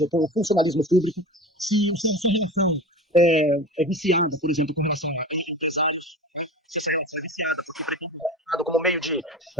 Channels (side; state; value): both; normal; correlation 0.34